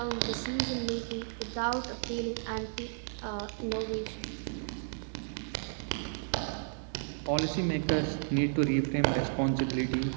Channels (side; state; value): left; silent; 56 dB below the other